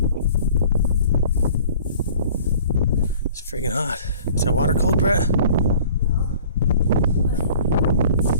It's freaking hot. Is that water cold, Brett?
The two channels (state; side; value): inverted; both; correlation -0.49